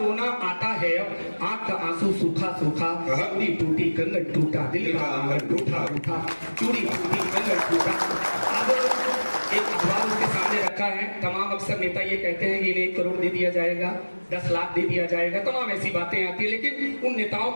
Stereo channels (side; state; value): both; inverted; correlation -1.00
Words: आता है अब, आंख का आंसू सूखा सूखा, चूड़ी टूटी कंगन टूटा दिल का आंगन रूठा रूठा, चूड़ी टूटी कंगन टूटा। अब एक अखबार उसके सामने रखा है, तमाम अक्सर नेता ये कहते हैं कि इन्हें 1 करोड़ दे दिया जाएगा, 10 लाख दे दिया जाएगा, तमाम ऐसी बातें आती है, लेकिन उन नेताओं